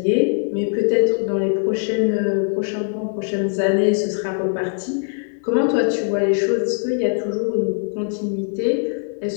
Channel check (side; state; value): right; silent; digital silence